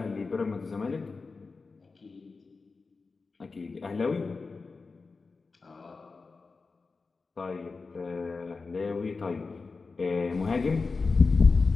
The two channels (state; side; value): quieter; right; 4.3 dB